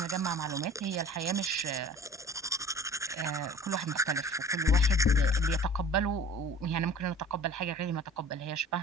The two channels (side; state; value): both; normal; correlation 0.45